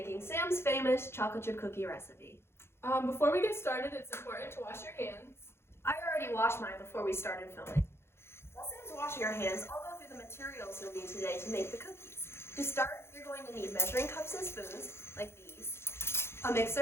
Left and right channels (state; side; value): late; right; 0.12 ms